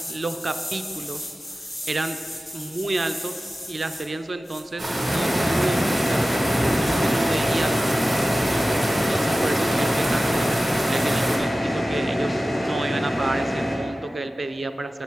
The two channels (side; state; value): both; normal; correlation 0.95